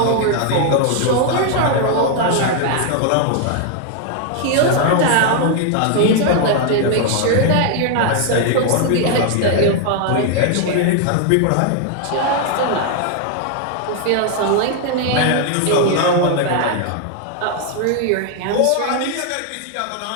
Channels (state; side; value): different; both; correlation 0.00